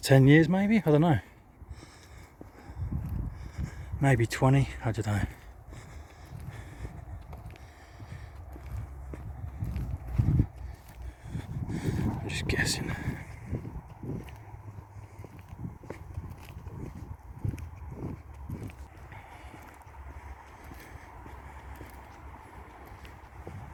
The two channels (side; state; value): both; identical; correlation 1.00